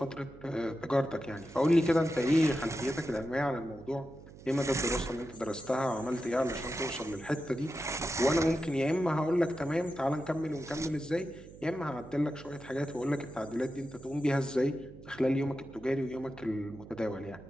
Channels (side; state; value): right; noise; hum, 18 dB below the sound